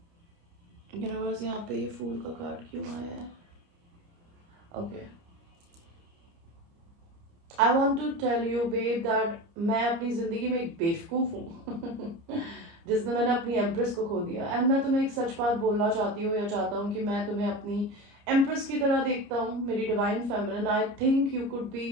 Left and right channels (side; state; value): left; late; 29 ms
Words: यूनिवर्स, यहाँ पे ये फूल का कार्ड क्यों आया है? Okay. I want to tell you babe that मैं अपनी जिंदगी में एक बेवकूफ हूँ जिसने मैंने अपनी एम्प्रेस को खो दिया. एंड मैं तुम्हें एक सच बात बोलना चाहती हूँ या चाहता हूँ कि मैं तुम्हें अपनी एम्प्रेस की तरह देखता हूँ, मेरी divine feminine. I think you could be,